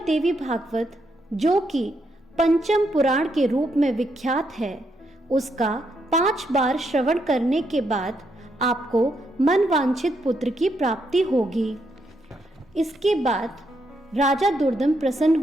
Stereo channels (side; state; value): both; normal; correlation 0.78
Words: देवी भागवत, जो कि पंचम पुराण के रूप में विख्यात है, उसका 5 बार श्रवण करने के बाद आपको मनवांछित पुत्र की प्राप्ति होगी। इसके बाद राजा दुर्दम प्रसन्न